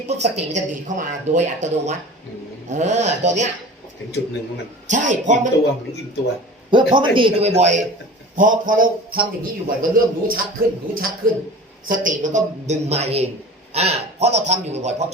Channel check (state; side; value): normal; both; correlation 0.38